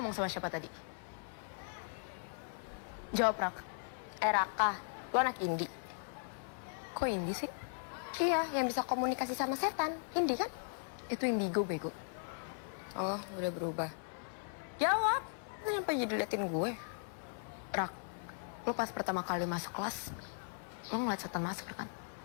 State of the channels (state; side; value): silent; right; 52 dB below the other